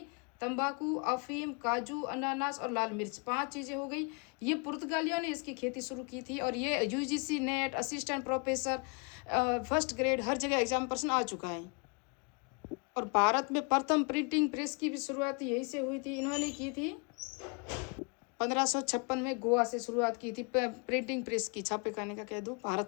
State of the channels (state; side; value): quieter; right; 35.6 dB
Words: तंबाकू, अफीम, काजू, अनानास और लाल मिर्च, पांच चीज़ें हो गई। ये पुर्तगालियों ने इसकी खेती शुरू की थी। और ये UGC NET, assistant professor, first grade, हर जगह एग्जाम पर्सन आ चुका है। और भारत में प्रथम प्रिंटिंग प्रेस की भी शुरुआत यहीं से हुई थी, इन्होंने की थी 1556 में, गोवा से शुरुआत की थी प्रिंटिंग प्रेस की, छापे खाने का कह दूँ,